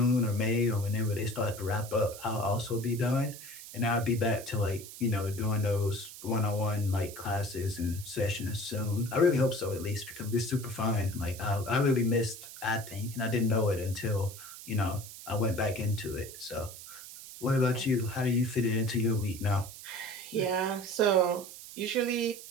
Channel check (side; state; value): right; noise; hiss, 14 dB below the sound